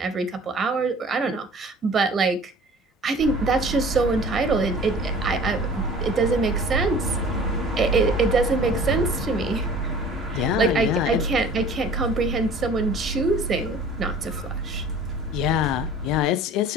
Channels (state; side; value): normal; both; correlation 0.46